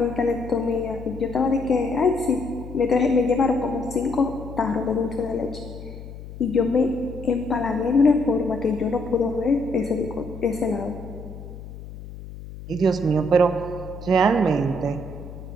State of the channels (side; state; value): left; noise; hum, 13 dB below the sound